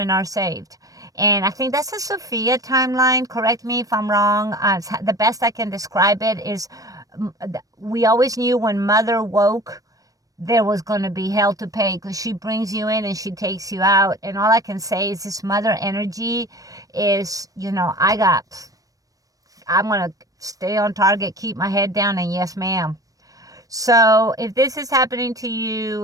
are saved. And I think that's a Sophia timeline. Correct me if I'm wrong. The best I can describe it is, we always knew when mother woke, there was going to be hell to pay, because she brings you in and she takes you out. And all I can say is this mother energy is, I'm going to stay on target, keep my head down, and yes, ma'am. So if this is happening to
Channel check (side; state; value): left; late; 0.17 ms